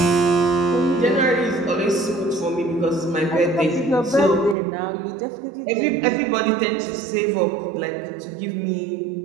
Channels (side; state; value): left; drops out; at 4.5 s